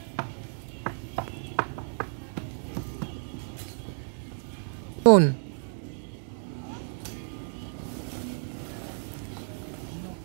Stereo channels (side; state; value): left; silent; digital silence